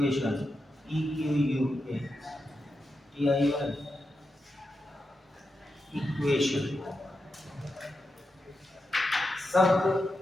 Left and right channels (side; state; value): both; normal; correlation 0.88